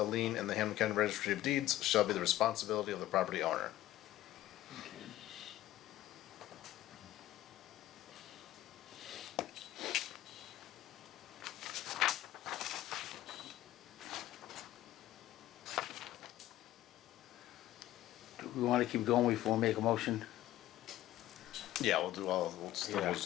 lien in the Hamilton County Registry of Deeds shall be the responsibility of the property owner. Do we wanna keep going before we make a motion? Yeah, we'll still Yeah. do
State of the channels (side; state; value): right; quieter; 14.7 dB